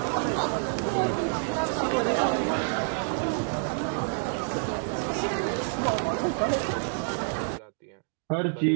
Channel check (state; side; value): silent; left; 59 dB below the other